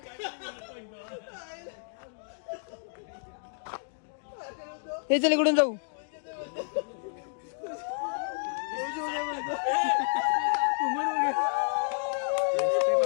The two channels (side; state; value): right; silent; digital silence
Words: हे चल इकडून जाऊ.